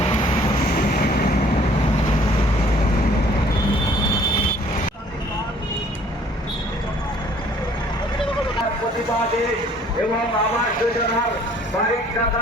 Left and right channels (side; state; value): both; normal; correlation 0.57